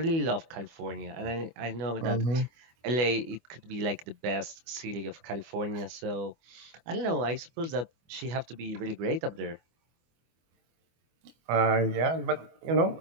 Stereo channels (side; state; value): left; late; 24 ms